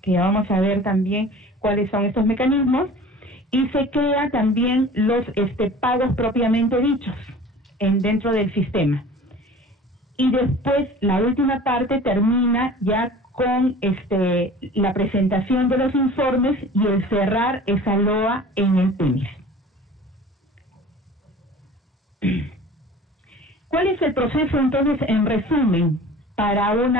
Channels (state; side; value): normal; both; correlation 0.43